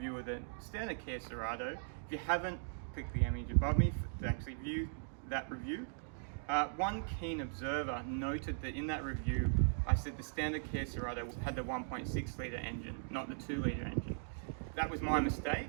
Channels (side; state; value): left; silent; digital silence